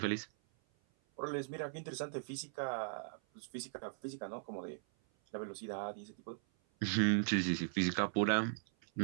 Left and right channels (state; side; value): silent; left; 52 dB below the other